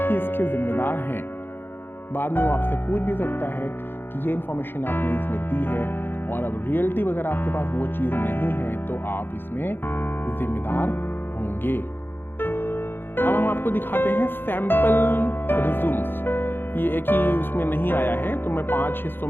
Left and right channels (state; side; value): late; right; 0.10 ms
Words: इसके जिम्मेदार हैं। बाद में वो आपसे पूछ भी सकता है कि ये इन्फॉर्मेशन आपने इसमें दी है, और अब रियलिटी वगैरह आपके पास वो चीज़ नहीं है तो आप इसमें जिम्मेदार होंगे। अब हम आपको दिखाते हैं सैंपल रिज्यूम्स। ये एक ही उसमें नहीं आया है, तो मैं 5 हिस्सों